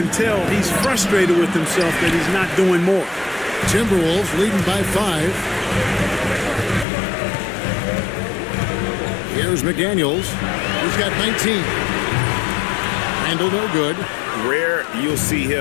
tell he's frustrated with himself that he's not doing more. Timberwolves leading by 5. Here's McDaniels. He's got 19. Randall no good. Rare you'll see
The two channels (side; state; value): right; drops out; at 6.9 s